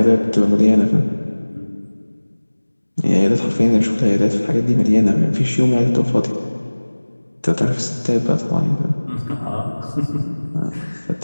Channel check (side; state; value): both; inverted; correlation -1.00